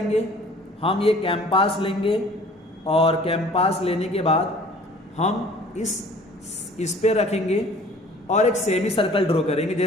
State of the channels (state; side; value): normal; both; correlation 0.51